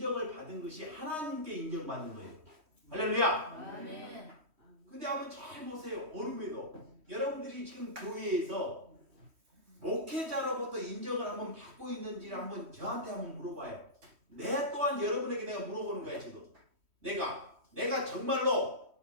받은 것이 하나님께 인정받은 거예요. 할렐루야. 아멘. 근데 한번 잘 보세요. 어른에도 여러분들이 지금 교회에서 목회자로부터 인정을 한번 받고 있는지를 한번 저한테 한번 물어봐요. 내 또한 여러분에게 내가 물어보는 거야. 지금 내가 정말로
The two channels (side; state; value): left; late; 3.1 ms